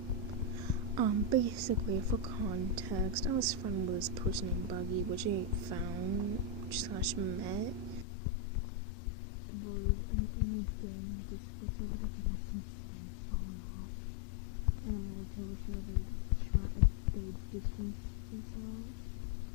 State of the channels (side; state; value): right; drops out; at 8.1 s